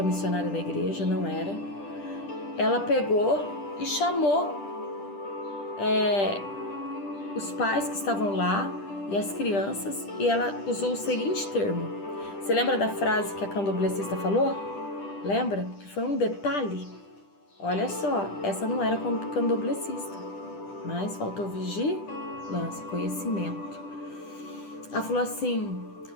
missionária da igreja, não era, ela pegou e chamou os pais que estavam lá e as crianças, e ela usou o seguinte termo. Você lembra da frase que a candomblessista falou? Lembra? Que foi um detalhe. Olha só, essa não era candomblessista, mas faltou vigilância, conhecimento. Ela falou assim,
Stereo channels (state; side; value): late; right; 10 ms